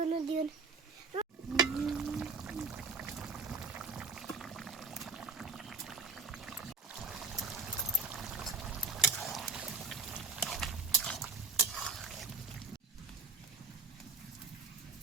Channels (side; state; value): left; quieter; 4.5 dB